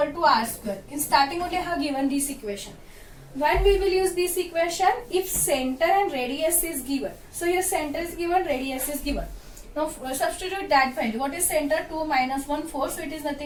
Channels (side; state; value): both; identical; correlation 1.00